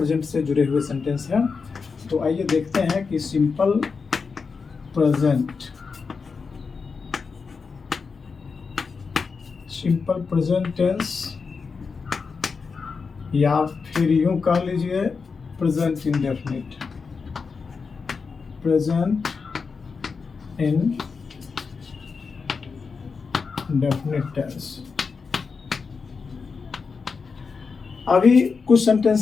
से जुड़े हुए सेंटेंस हैं। तो आइए देखते हैं कि सिंपल प्रेजेंट टेंस या फिर यूं कह लीजिए present indefinite, present indefinite tense. अभी कुछ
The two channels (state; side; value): quieter; right; 5.1 dB